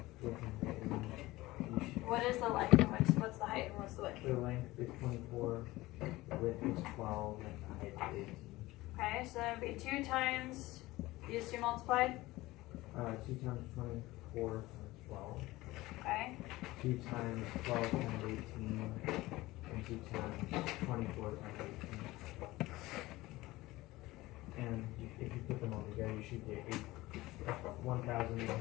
with height and then you should, What is the length, and what's the height, and what's the width? the length is 24, width is 12, and the height is 18. Okay, so that would be 2 times, these two multiplied, 2 times 24 times 12. okay, 2 times 12 times 18, and 2 times 24 times 18. And if you put them all together, you should get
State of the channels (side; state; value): right; quieter; 18.9 dB